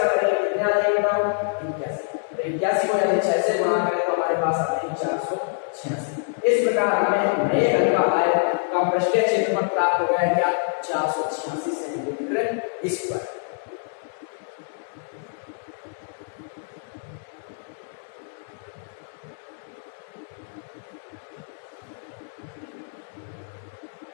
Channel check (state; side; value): silent; right; digital silence